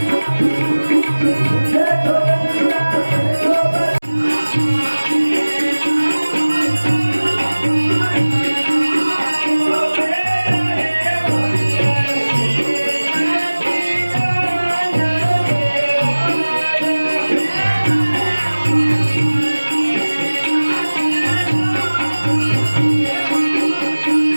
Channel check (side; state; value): both; inverted; correlation -1.00